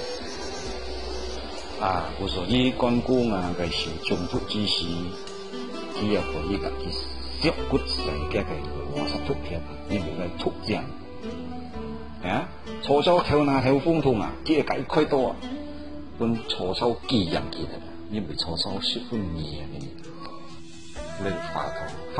我說啲關公嘅是中途之時，佢又可以嘅削骨細嘅話實突片，因為佢突正。曹操頭拿頭風筒佢係虧多啊，跟曹操幾樣嘅，因為曹操十分嚴嘅。你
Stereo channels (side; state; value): both; identical; correlation 1.00